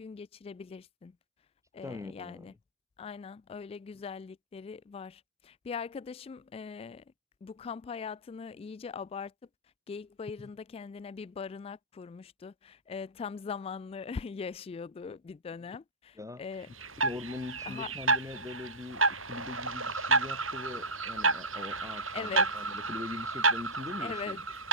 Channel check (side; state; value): both; normal; correlation -0.15